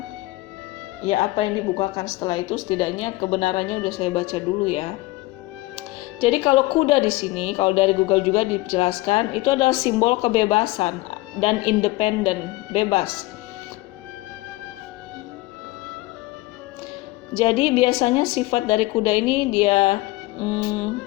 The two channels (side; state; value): right; quieter; 19.9 dB